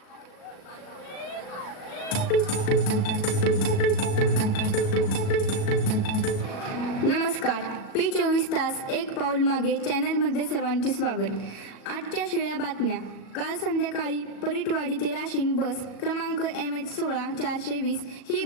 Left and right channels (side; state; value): right; late; 37 ms